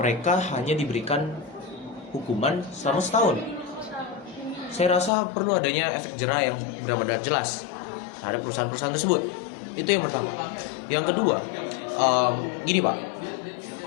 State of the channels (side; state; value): right; drops out; at 5.1 s